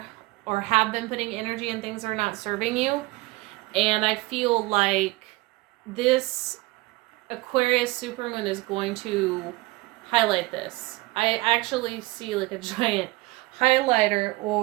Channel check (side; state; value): left; quieter; 21.4 dB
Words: have been putting energy in things that are not serving you. And I feel like this Aquarius supermoon is going to highlight this. I actually see like a giant highlighter